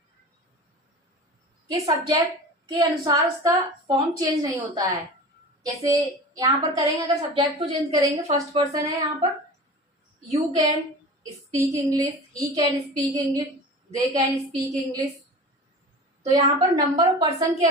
के सब्जेक्ट के अनुसार उसका फॉर्म चेंज नहीं होता है। जैसे यहाँ पर करेंगे, अगर सब्जेक्ट को चेंज करेंगे, फर्स्ट पर्सन है यहाँ पर, you can speak English, he can speak English, they can speak English. तो यहाँ पर नंबर और पर्सन के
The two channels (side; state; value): both; normal; correlation 0.35